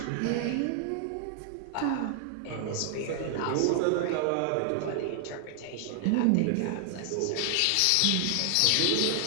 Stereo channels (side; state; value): both; different; correlation 0.00